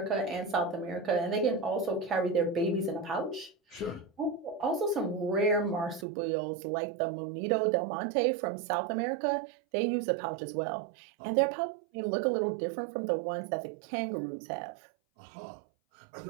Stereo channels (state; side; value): drops out; left; at 6.1 s